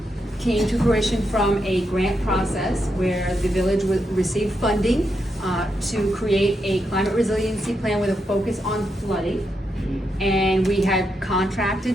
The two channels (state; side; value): normal; both; correlation 0.83